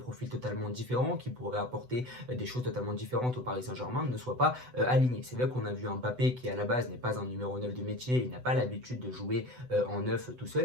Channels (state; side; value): late; left; 8.0 ms